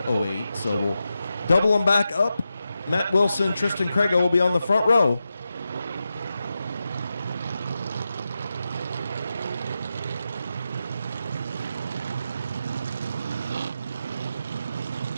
08. So we'll double them back up. Matt Wilson, Tristan Craigo will be on the front row.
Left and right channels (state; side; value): inverted; both; correlation -0.89